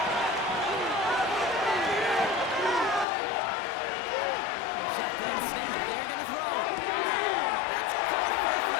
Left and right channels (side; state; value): right; drops out; at 3.1 s